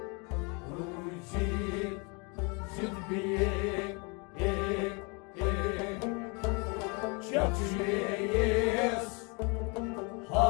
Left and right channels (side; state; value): right; quieter; 31.9 dB